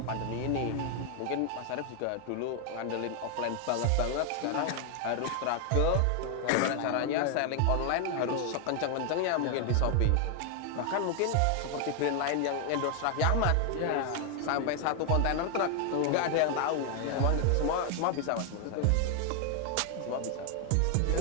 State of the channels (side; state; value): both; different; correlation 0.00